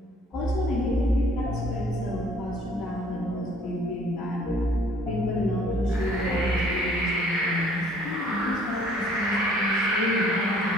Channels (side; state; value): both; normal; correlation 0.57